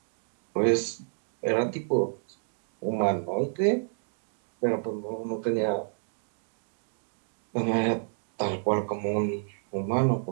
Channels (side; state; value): left; silent; digital silence